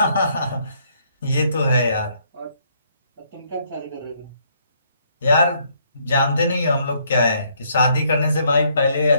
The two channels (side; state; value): both; inverted; correlation -0.69